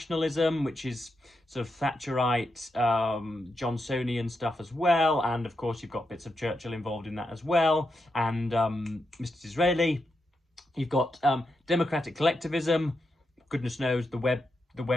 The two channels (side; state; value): both; normal; correlation 0.85